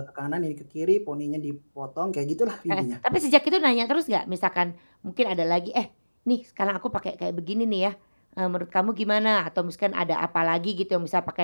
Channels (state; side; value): inverted; both; correlation -1.00